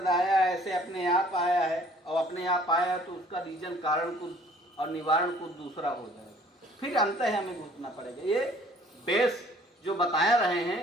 आया है, ऐसे अपने आप आया है और अपने आप आया है तो उसका रीजन कारण कुछ और निवारण कुछ दूसरा हो जाएगा, फिर अंत है हमें घुसना पड़ेगा। ये बेस जो बताया रहे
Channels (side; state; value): both; normal; correlation 0.55